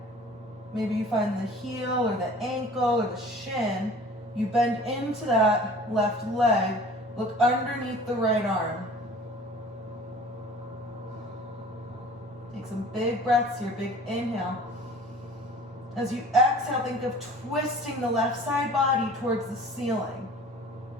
Maybe you find the heel or the ankle or the shin. You bend into that left leg. Look underneath the right arm. Take some big breaths here, big inhale. As you exhale, think of twisting the left side body towards the ceiling.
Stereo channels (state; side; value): normal; both; correlation 0.46